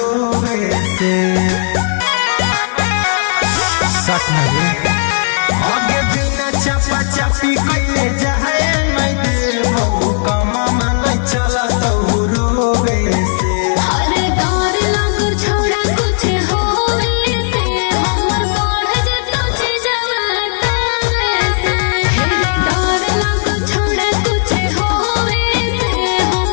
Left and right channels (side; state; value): right; silent; digital silence